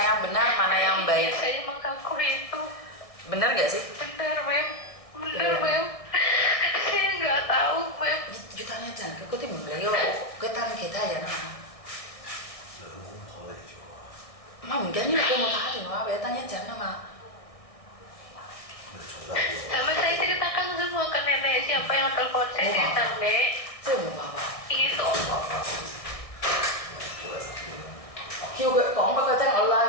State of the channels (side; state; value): right; late; 1.6 ms